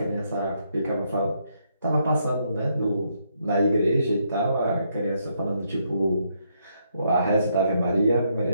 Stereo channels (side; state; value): both; inverted; correlation -0.75